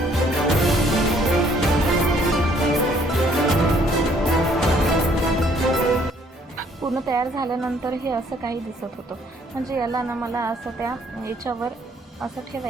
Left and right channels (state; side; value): normal; both; correlation 0.63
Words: पूर्ण तयार झाल्यानंतर हे असं काही दिसत होतं. म्हणजे याला ना मला असं त्या याच्यावर असं